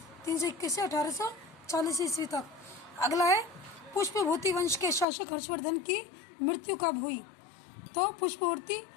321 से 1840 ईस्वी तक। अगला है, पुष्पभूति वंश के शासक हर्षवर्धन की मृत्यु कब हुई? तो पुष्पभूति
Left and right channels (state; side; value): drops out; right; at 5.1 s